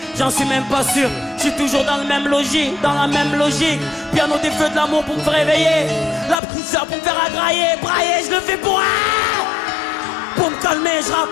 j'en suis même pas sûr. Je suis toujours dans le même logis, dans la même logique. Piano des feux de l'amour pour me réveiller, la petite sœur pour me faire agrailler, brailler, je le fais pour me calmer, je rappe,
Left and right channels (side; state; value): right; drops out; at 6.4 s